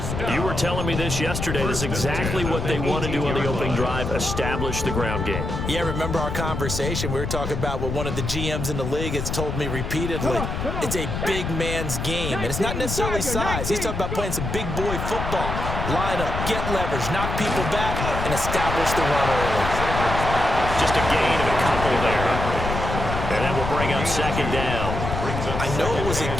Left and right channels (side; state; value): left; noise; rumble, 4 dB below the sound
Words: You were telling me this yesterday. This is exactly what they want to do on the opening drive, establish the ground game. Yeah, remember our conversation? We were talking about what one of the GMs in the league has told me repeatedly. It's a big man's game, and it's not necessarily size. He's talking about playing some big boy football. Line up, get leverage, knock people back, and establish the run early. Just a gain of a couple there. And that will bring up 2nd down. I know it was a